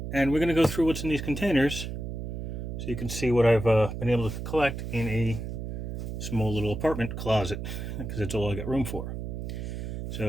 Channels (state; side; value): noise; right; hum, 5 dB below the sound